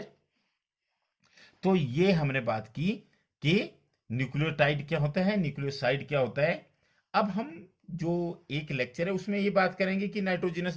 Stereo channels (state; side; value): identical; both; correlation 1.00